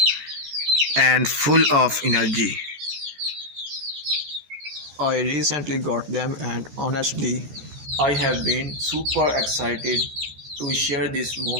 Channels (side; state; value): left; late; 13 ms